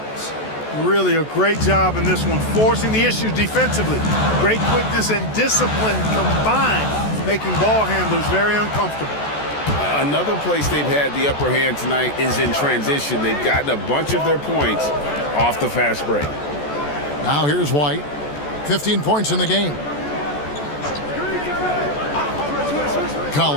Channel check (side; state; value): right; late; 14 ms